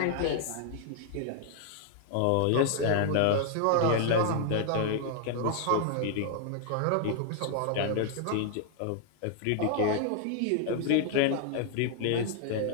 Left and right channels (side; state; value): both; different; correlation 0.00